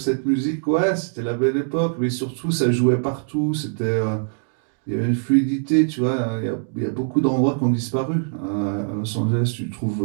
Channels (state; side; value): silent; left; digital silence